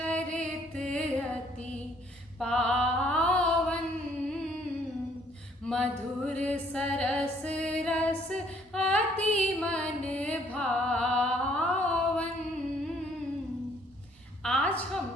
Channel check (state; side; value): normal; both; correlation 0.63